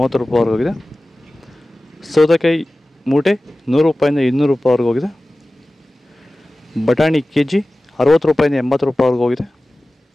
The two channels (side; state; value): both; normal; correlation 0.97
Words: ರೂಪಾಯಿ ಹೋಗಿದೆ. ಸೌತೆಕಾಯಿ ಮೂಟೆ 100 ರೂಪಾಯಿಂದ 200 ರೂಪಾಯಿವರೆಗೆ ಹೋಗಿದೆ. ಬಟಾಣಿ KG 60 ರೂಪಾಯಿಂದ 80 ರೂಪಾಯಿವರೆಗೆ ಹೋಗಿದೆ.